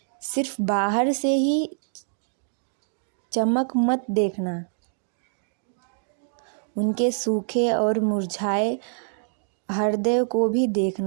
सिर्फ बाहर से ही चमक मत देखना, उनके सूखे और मुरझाए हृदय को भी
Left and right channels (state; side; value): silent; left; digital silence